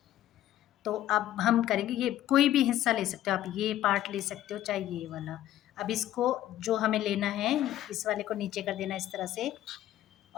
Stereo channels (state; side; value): quieter; right; 13.0 dB